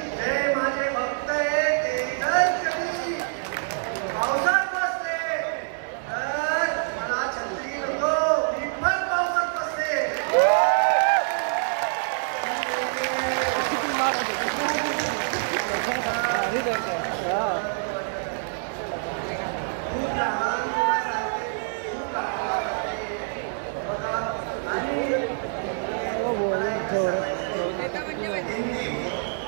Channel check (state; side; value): silent; left; digital silence